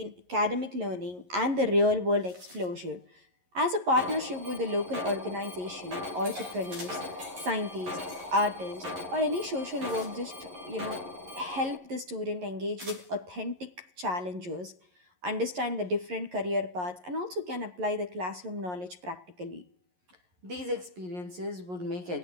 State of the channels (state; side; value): late; left; 11 ms